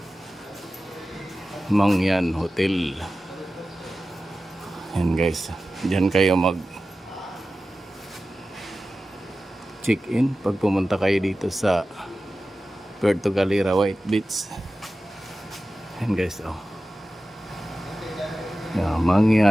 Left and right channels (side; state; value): both; normal; correlation 0.94